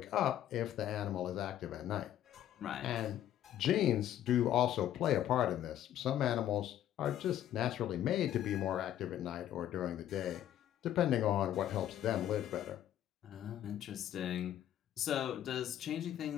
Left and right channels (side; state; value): right; quieter; 11.6 dB